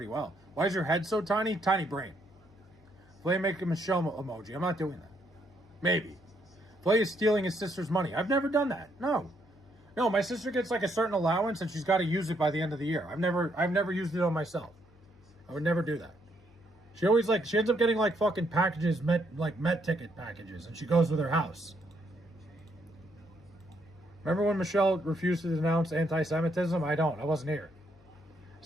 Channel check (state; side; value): noise; left; hum, 27 dB below the sound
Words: well. Why is your head so tiny? Tiny brain. Flay, make a Michelle emoji. I'm not doing that. Maybe. Flay is stealing his sister's money. I've never done that. No, my sister gets like a certain allowance and she's got to use it by the end of the year. I've never used it on myself. I would never do that. She ends up getting like fucking packages, Met ticket packages, and she goes with her house. Remember when Michelle refused to denounce anti-Semitism? I wasn't here.